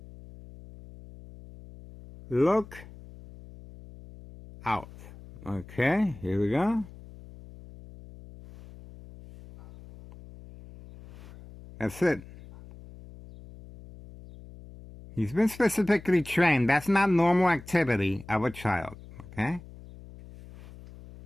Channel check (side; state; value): left; noise; hum, 18 dB below the sound